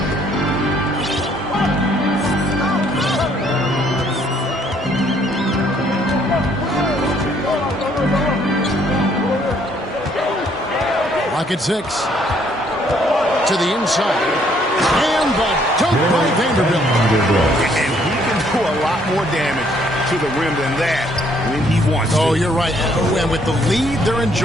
Rocket 6 to the inside. And the dunk by Vanderbilt. And he can do a lot more damage to the rim than that when he wants to. Oh, you're right. And with the lead they're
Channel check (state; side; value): normal; both; correlation 0.66